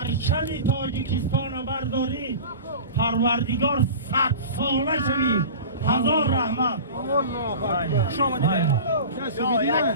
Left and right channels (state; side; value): inverted; both; correlation -0.35